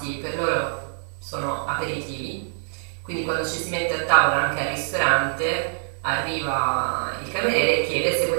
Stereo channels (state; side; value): silent; left; digital silence